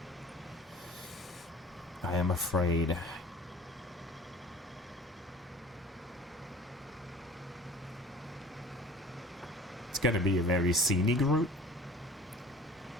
I am afraid. It's gonna be a very scenic route,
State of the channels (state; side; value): normal; both; correlation 0.46